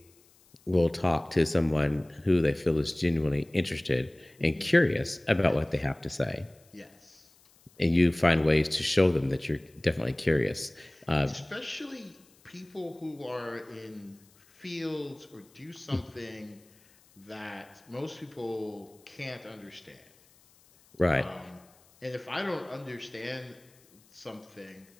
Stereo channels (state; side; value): noise; left; hiss, 30 dB below the sound